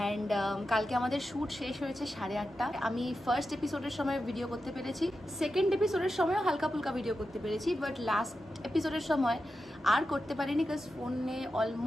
কালকে আমাদের শ্যুট শেষ হয়েছে 8:30। আমি ফার্স্ট এপিসোডের সময় ভিডিও করতে পেরেছি, সেকেন্ড এপিসোডের সময়ও হালকা ফুলকা ভিডিও করতে পেরেছি, বাট লাস্ট এপিসোডের সময় আর করতে পারিনি, বিকজ ফোনে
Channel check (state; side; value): normal; both; correlation 0.90